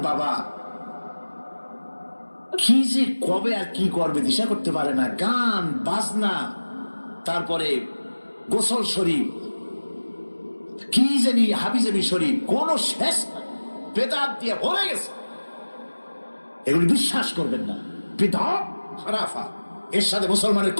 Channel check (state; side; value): inverted; both; correlation -1.00